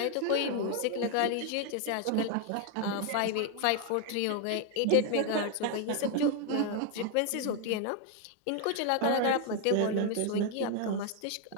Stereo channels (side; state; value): both; different; correlation 0.01